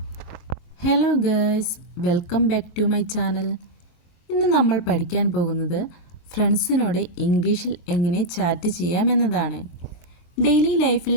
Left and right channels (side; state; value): right; late; 22 ms